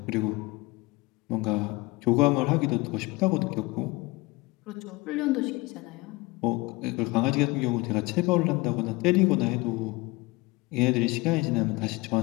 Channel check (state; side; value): quieter; right; 23.1 dB